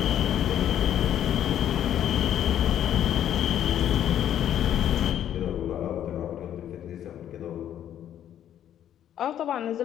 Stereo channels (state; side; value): quieter; right; 10.6 dB